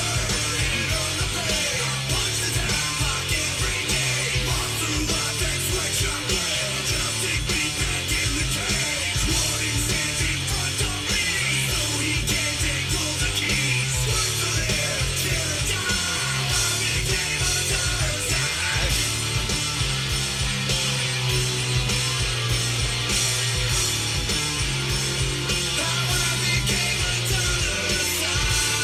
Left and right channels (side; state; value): both; identical; correlation 1.00